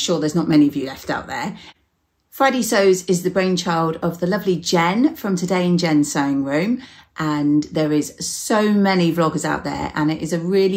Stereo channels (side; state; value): both; identical; correlation 1.00